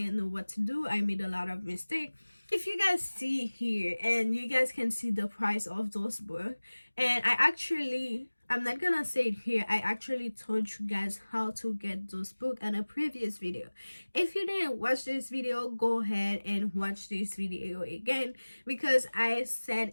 know what to do. I made a lot of mistakes. If you guys see here, and you guys can see the price of those books, and I'm not gonna say it here, I actually told you guys how to get those books in a previous video. If you didn't watch this video, go ahead and watch this video again, because I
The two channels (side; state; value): both; inverted; correlation -1.00